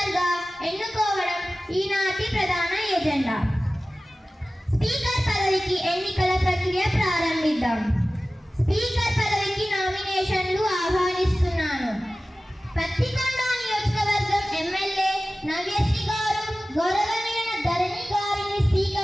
ఎన్నుకోవడం ఈనాటి ప్రధాన ఎజెండా. స్పీకర్ పదవికి ఎన్నికల ప్రక్రియ ప్రారంభిద్దాం. స్పీకర్ పదవికి నామినేషన్లు ఆహ్వానిస్తున్నాను. పత్తికొండ నియోజకవర్గం ఎమ్మెల్యే నవ్యశ్రీ గారు గౌరవనీయ ధరణి గారిని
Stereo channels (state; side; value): normal; both; correlation 0.96